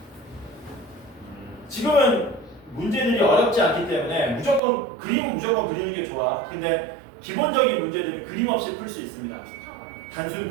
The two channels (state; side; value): drops out; left; at 4.6 s